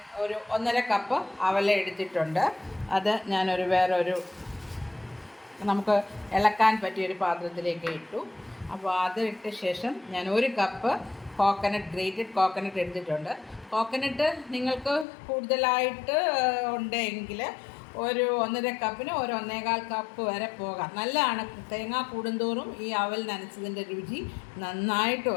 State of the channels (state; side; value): drops out; right; at 15.1 s